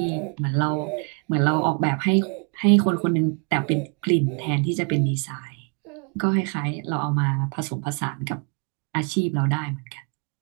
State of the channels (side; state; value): left; quieter; 37.6 dB